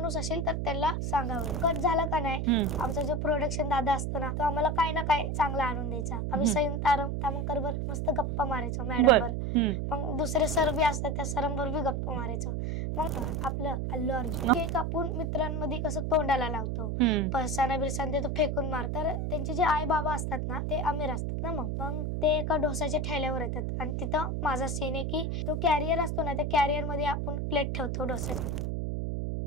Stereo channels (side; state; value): right; noise; hum, 1 dB below the sound